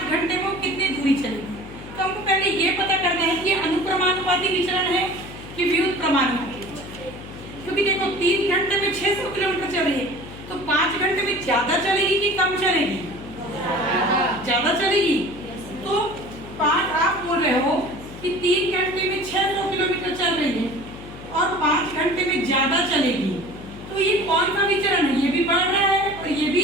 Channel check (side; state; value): left; noise; hum, 14 dB below the sound